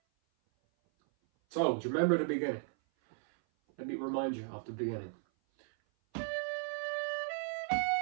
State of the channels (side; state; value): left; silent; 54 dB below the other